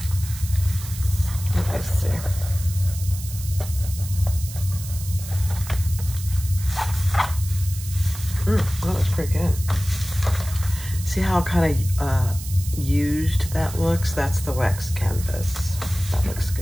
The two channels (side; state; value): right; noise; hiss, 12 dB below the sound